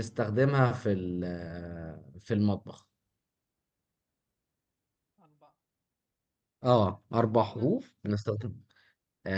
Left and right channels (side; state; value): both; identical; correlation 1.00